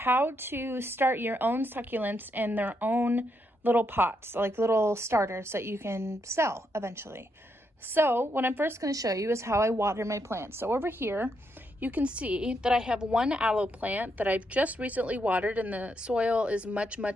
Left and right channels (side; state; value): both; normal; correlation 0.79